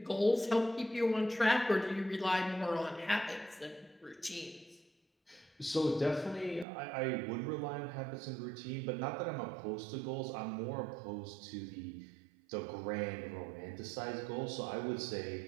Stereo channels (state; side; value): drops out; left; at 6.7 s